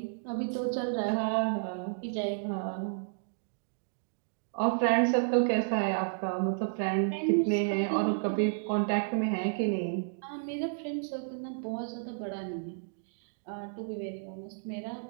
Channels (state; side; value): silent; left; digital silence